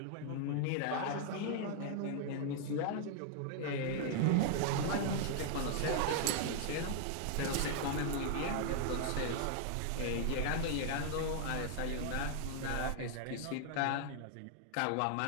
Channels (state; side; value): different; both; correlation -0.01